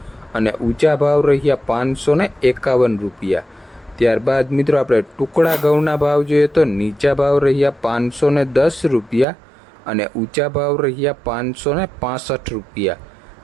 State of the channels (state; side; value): drops out; left; at 9.2 s